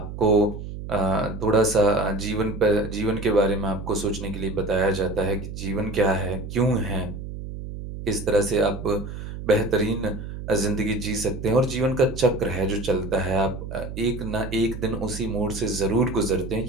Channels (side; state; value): right; noise; hum, 9 dB below the sound